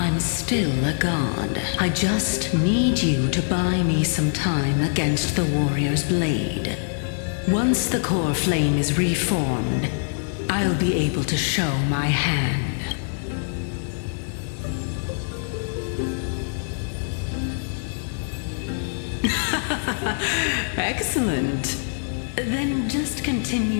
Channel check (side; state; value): right; silent; 63 dB below the other